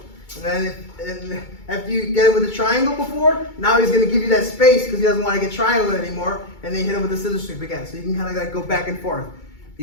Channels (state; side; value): late; right; 2.2 ms